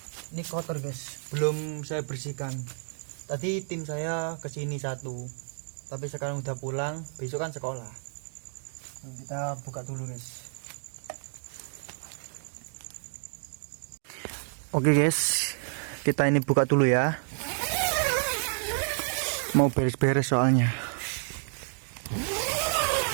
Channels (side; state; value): left; silent; 58 dB below the other